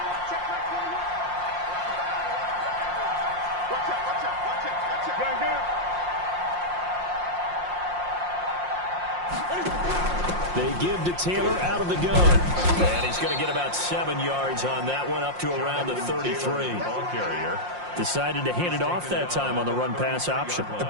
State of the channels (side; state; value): left; late; 5.6 ms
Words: They give to Taylor out of the gun. And he's going to get about 7 yards on that one, up to around the 33. Ball carrier. Decided to hand it off that time on the run-pass option.